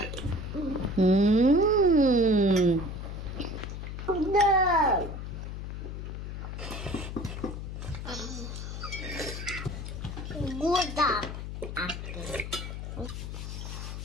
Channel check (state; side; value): noise; left; hum, 7 dB below the sound